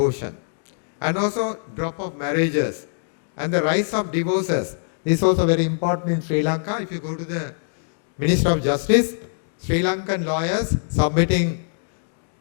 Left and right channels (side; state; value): right; silent; digital silence